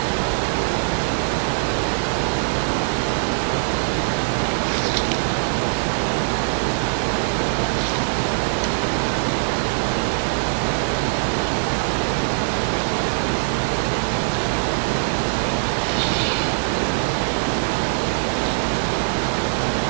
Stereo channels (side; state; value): left; silent; digital silence